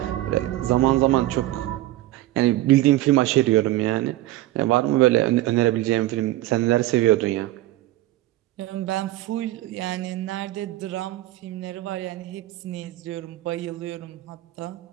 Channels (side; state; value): left; quieter; 16.2 dB